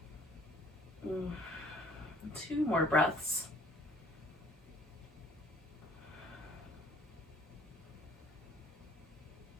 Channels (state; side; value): normal; both; correlation 0.56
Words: Two more breaths.